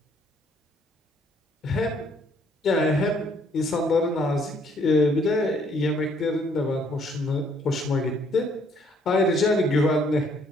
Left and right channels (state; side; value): normal; both; correlation 0.65